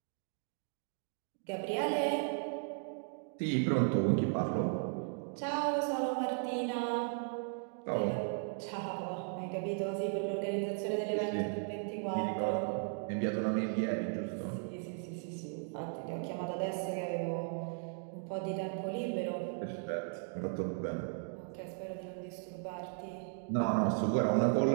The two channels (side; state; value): left; silent; 54 dB below the other